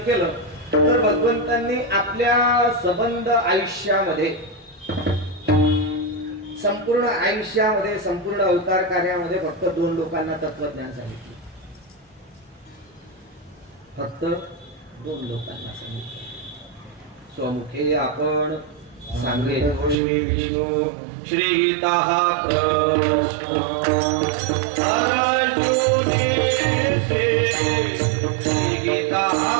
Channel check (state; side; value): drops out; left; at 20.0 s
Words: केलं तर भगवंतांनी आपल्या संबंध आयुष्यामध्ये संपूर्ण आयुष्यामध्ये संपूर्ण अवतार कार्यामध्ये फक्त 2 लोकांना तत्वज्ञान सांगितले. फक्त 2 लोकांना सांगितले. स्वमुखे आपण सांगेतो श्री विष्णू श्री गीता प्रश्न अर्जुने श्री गीता